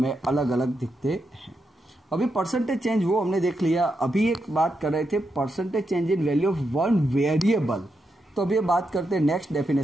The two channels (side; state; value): both; normal; correlation 0.84